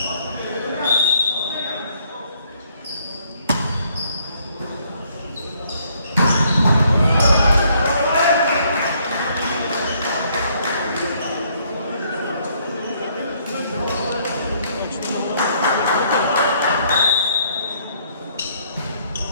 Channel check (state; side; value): inverted; both; correlation -0.67